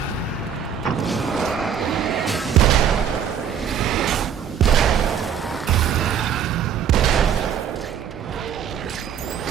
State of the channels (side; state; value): left; quieter; 8.2 dB